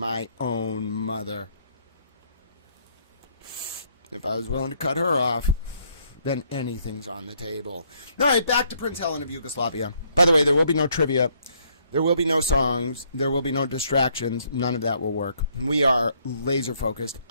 own mother. If I was willing to cut her off, then anything's on the table. All right, back to Prince Helen of Yugoslavia. By the way, there will be no trivia. There will be no songs. There will be no distractions. None of that will work. We are laser focused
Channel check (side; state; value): both; inverted; correlation -0.68